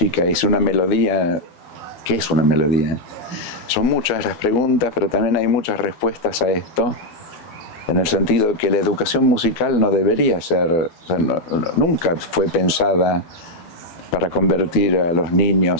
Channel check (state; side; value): late; right; 12 ms